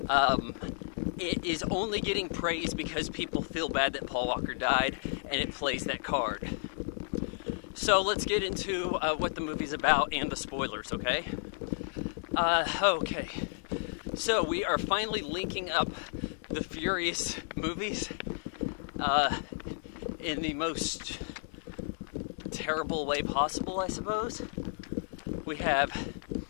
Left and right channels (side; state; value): right; silent; digital silence